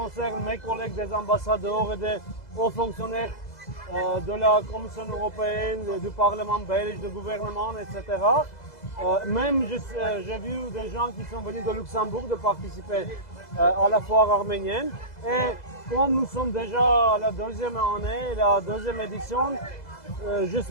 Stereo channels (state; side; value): late; right; 2.0 ms